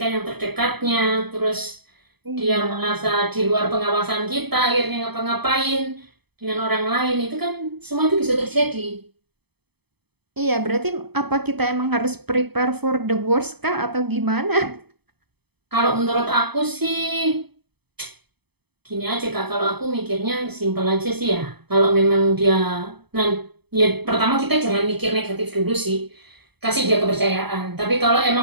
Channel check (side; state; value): left; late; 0.98 ms